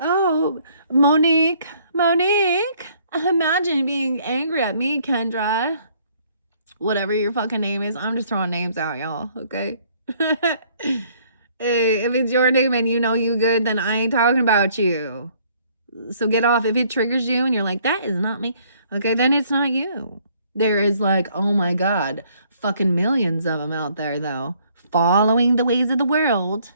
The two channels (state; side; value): inverted; both; correlation -0.63